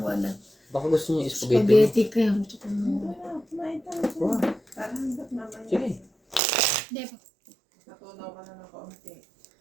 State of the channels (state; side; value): drops out; left; at 6.4 s